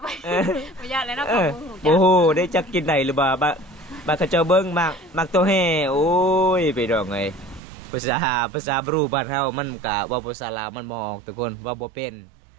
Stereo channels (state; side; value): drops out; left; at 7.6 s